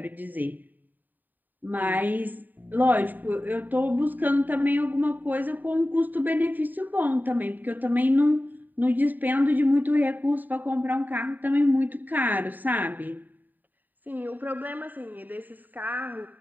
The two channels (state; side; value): late; left; 0.088 ms